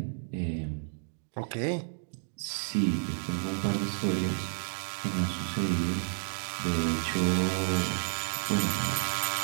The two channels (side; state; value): left; silent; digital silence